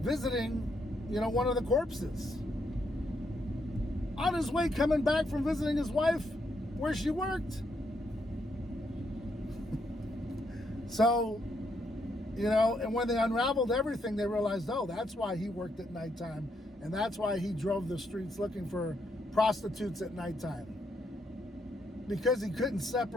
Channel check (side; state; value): both; normal; correlation 0.77